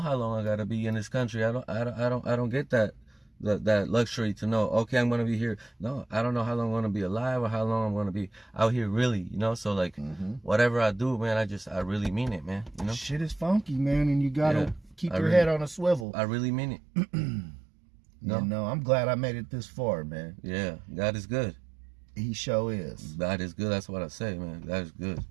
how long I gotta be in this country. I don't get that luxury to know. Okay, I'm gonna be here. No, I don't know how long I'm gonna be alive or how long I'm gonna be out here. Really, you know. So like, whatever I do, man, I really mean it, man. You know, shit is funky, man, and you gotta keep your head on a swivel. I really mean it. No, I'm glad I made it this far, man. Yeah, God is good. He sure is. God is good. That's what I say, man. God is good.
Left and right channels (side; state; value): left; drops out; at 16.1 s